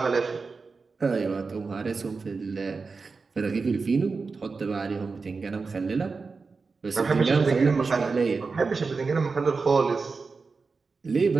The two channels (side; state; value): left; quieter; 4.5 dB